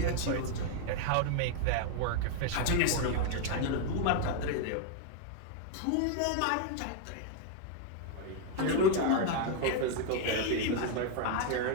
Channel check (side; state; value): both; different; correlation 0.00